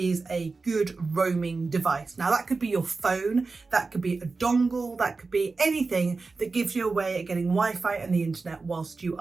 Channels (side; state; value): left; quieter; 4.0 dB